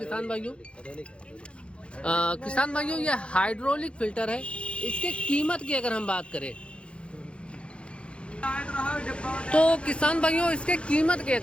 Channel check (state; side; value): late; right; 0.058 ms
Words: भाइयों। किसान भाइयों, ये हाइड्रोलिक फिल्टर है। इसके कीमत की अगर हम बात करें तो किसान भाइयों, इसके कीमत की